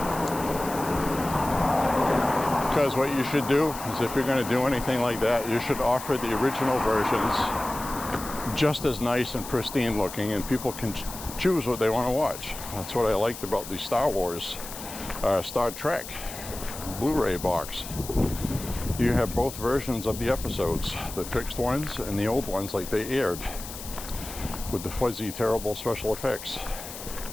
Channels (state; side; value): noise; left; hiss, 11 dB below the sound